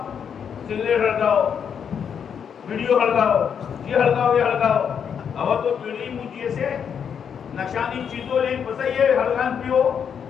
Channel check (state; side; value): quieter; right; 7.5 dB